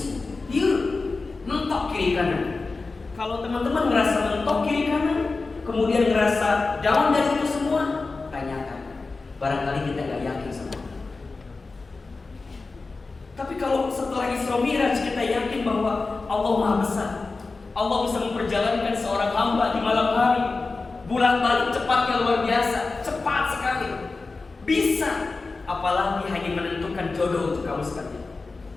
dia mentok kiri kanan. Kalau teman-teman ngerasa mentok kiri kanan, kemudian ngerasa down dari itu semua, tanyakan. Barangkali kita nggak yakin sama. Tapi kalau setelah Isra Mi'raj kita yakin bahwa Allah Maha Besar, Allah bisa memperjalankan seorang hamba di malam hari, bolak-balik cepatnya luar biasa, cepat sekali, bisa. Apalagi hanya menentukan jodoh untuk kamu sekali.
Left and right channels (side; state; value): right; quieter; 3.8 dB